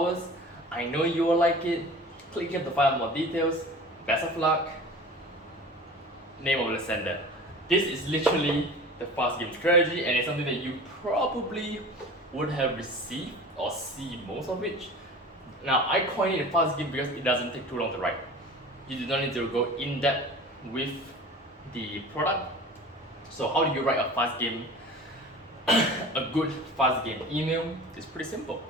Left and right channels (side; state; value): both; normal; correlation 0.39